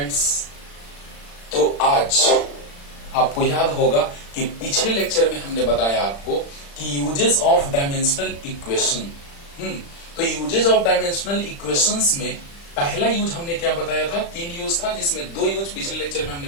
तो आज आपको याद होगा कि पिछले लेक्चर में हमने बताया आपको कि यूजेस ऑफ डायमेंशनल इक्वेशन। तो यूजेस ऑफ डायमेंशनल इक्वेशंस में पहला यूज हमने क्या बताया था, 3 यूज था, जिसमें 2 यूज पिछले लेक्चर में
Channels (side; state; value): right; late; 35 ms